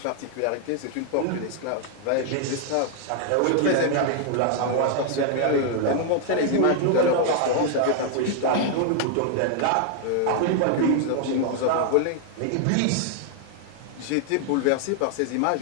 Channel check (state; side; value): different; both; correlation 0.00